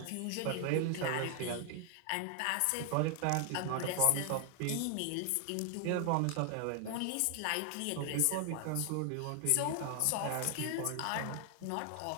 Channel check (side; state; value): both; different; correlation 0.00